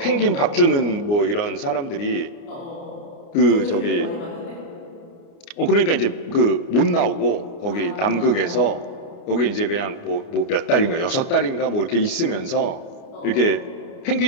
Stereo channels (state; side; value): late; right; 29 ms